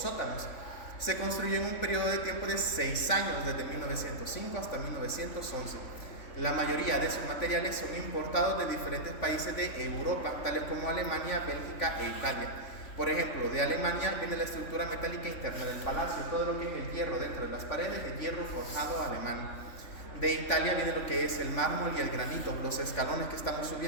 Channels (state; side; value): late; right; 3.5 ms